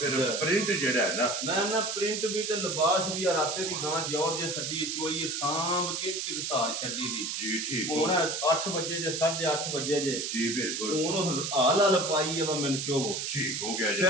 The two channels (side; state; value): right; noise; hiss, 3 dB below the sound